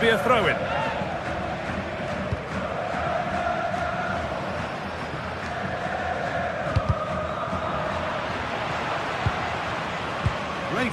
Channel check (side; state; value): both; identical; correlation 1.00